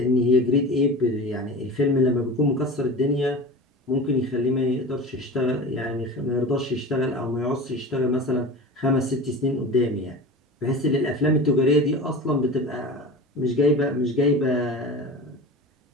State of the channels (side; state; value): both; normal; correlation 0.32